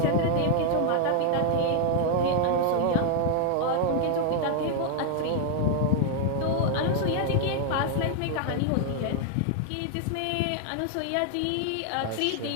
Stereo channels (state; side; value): different; both; correlation 0.00